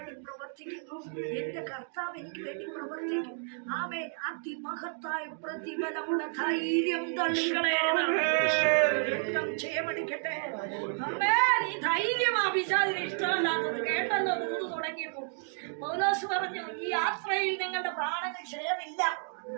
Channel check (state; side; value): silent; left; 57 dB below the other